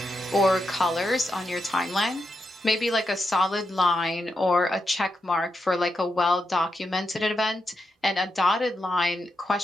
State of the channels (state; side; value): normal; both; correlation 0.85